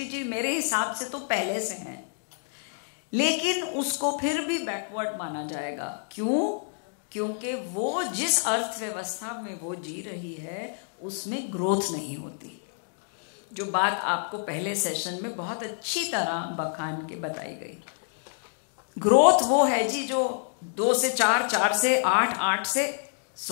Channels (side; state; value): right; silent; digital silence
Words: मेरे हिसाब से तो पहले से हैं, लेकिन उसको फिर भी बैकवर्ड माना जाएगा। क्यों? क्योंकि वो जिस अर्थव्यवस्था में वो जी रही है उसमें ग्रोथ नहीं होती, जो बात आपको पहले सेशन में बहुत अच्छी तरह बखान के बताई गई। ग्रोथ वो है जी जो 2 से 4, 4 से 8, 8 से